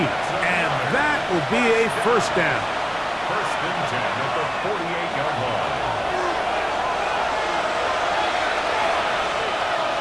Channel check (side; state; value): both; identical; correlation 1.00